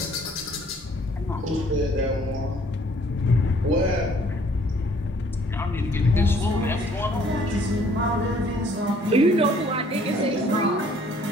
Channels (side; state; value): both; normal; correlation 0.60